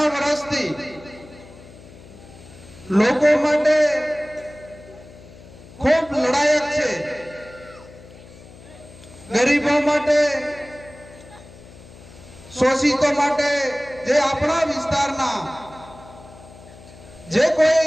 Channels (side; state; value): left; noise; hum, 20 dB below the sound